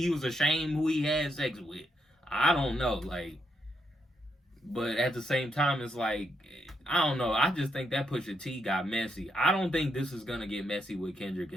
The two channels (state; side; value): normal; both; correlation 0.79